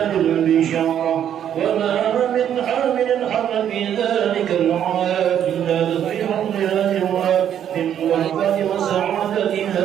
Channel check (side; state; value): left; quieter; 9.8 dB